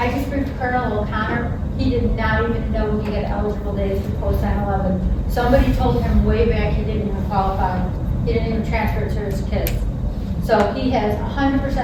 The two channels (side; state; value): both; identical; correlation 1.00